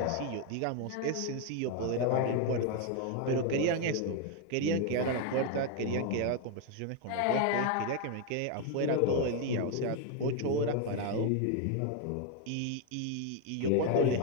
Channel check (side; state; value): both; different; correlation 0.01